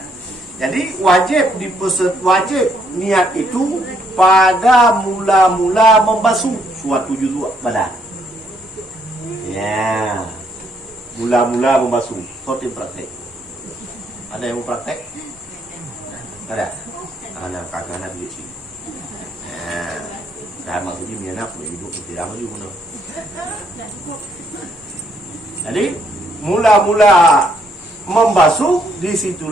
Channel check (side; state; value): both; normal; correlation 0.71